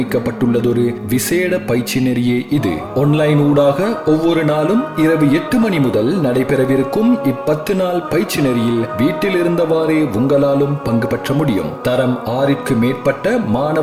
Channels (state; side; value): identical; both; correlation 1.00